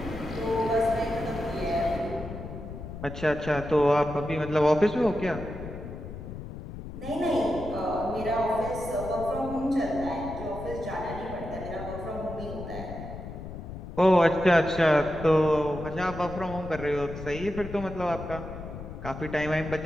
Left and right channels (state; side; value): noise; left; rumble, 10 dB below the sound